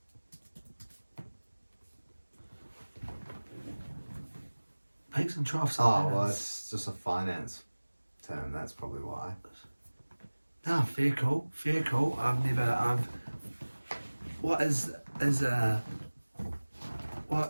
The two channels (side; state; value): both; inverted; correlation -1.00